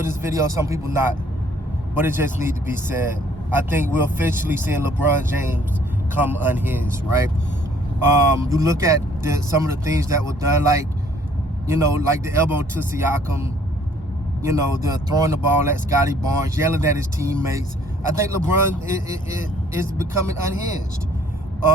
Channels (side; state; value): both; normal; correlation 0.60